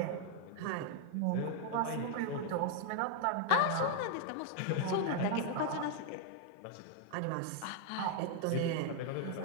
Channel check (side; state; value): both; different; correlation 0.00